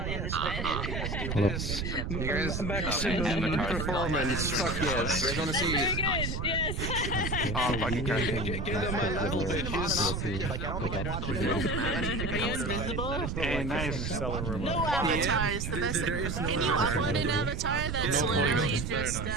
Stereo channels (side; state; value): right; noise; rumble, 3 dB below the sound